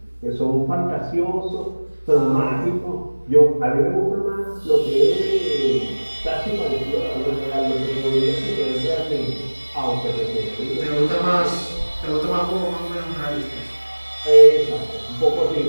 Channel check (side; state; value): both; inverted; correlation -1.00